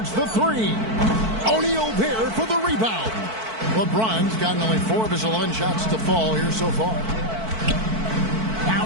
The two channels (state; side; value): late; left; 4.5 ms